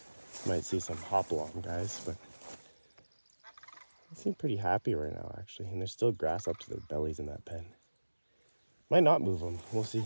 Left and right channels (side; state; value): both; inverted; correlation -1.00